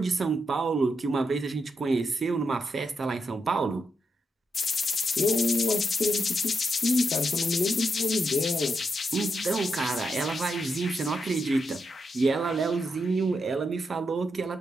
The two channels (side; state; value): both; normal; correlation 0.83